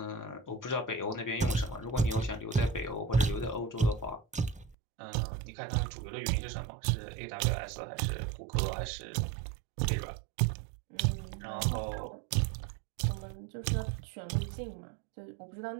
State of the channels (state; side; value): drops out; left; at 4.8 s